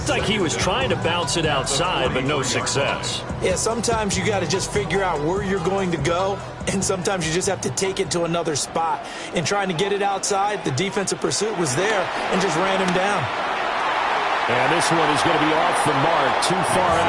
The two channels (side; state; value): both; identical; correlation 1.00